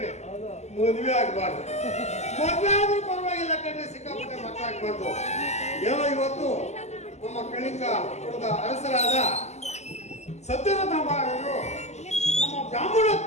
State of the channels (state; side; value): late; right; 0.33 ms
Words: ಮದುವೆ ಆಗಬಾರ್ದು. ಮದುವೆ ಆದ್ರೂ ಪರವಾಗಿಲ್ಲ ಕಣ್ರಿ, ಸಿಕ್ಕಾಪಟ್ಟೆ ಮಕ್ಕಳಾಗಬಾರ್ದು. ಏನೋ ಇವತ್ತು ನಮ್ಮ ಕಳಿಂಗ ಕುಲದ ಅರಸರಾದ ಸತ್ಯರಥ ಮಹಾರಾಜರು ನಮ್ಮ